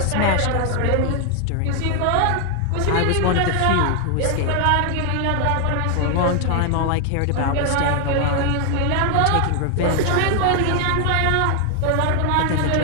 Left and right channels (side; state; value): both; different; correlation 0.00